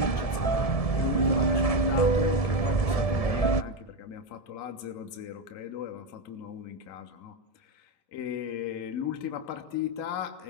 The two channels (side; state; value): right; late; 1.7 ms